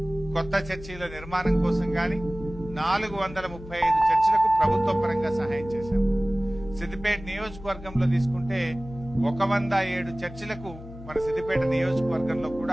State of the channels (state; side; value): noise; left; hum, 15 dB below the sound